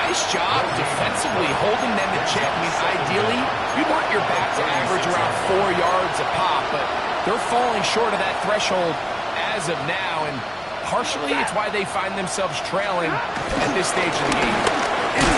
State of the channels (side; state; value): both; identical; correlation 1.00